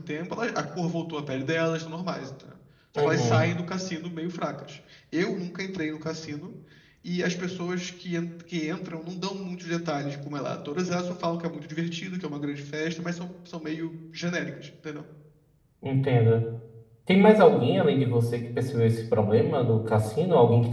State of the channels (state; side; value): identical; both; correlation 1.00